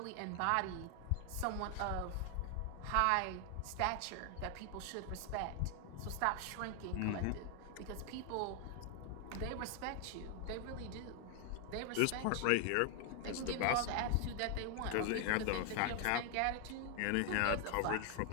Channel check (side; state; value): both; different; correlation 0.00